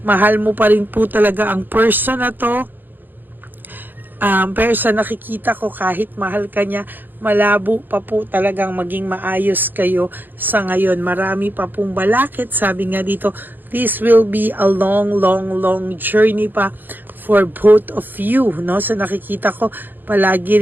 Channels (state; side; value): late; left; 0.090 ms